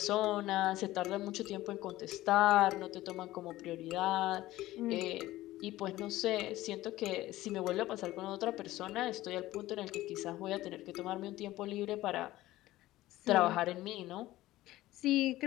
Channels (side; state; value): right; quieter; 16.4 dB